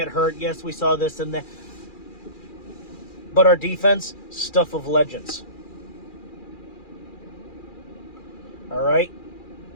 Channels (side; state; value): right; late; 2.4 ms